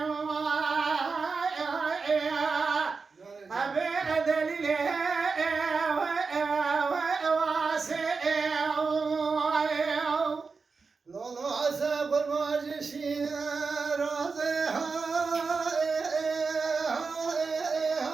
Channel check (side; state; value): left; quieter; 4.7 dB